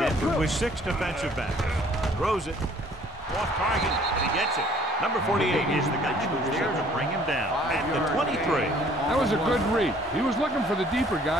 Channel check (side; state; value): both; normal; correlation 0.57